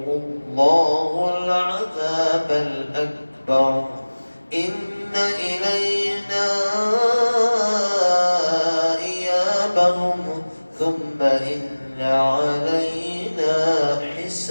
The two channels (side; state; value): both; inverted; correlation -1.00